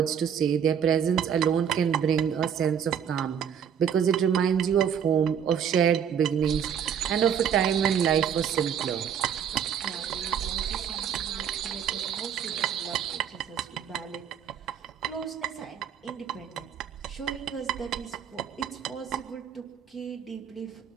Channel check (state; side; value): quieter; left; 8.2 dB